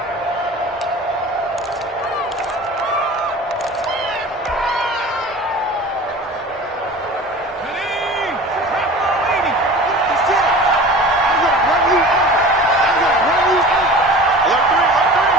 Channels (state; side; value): normal; both; correlation 0.39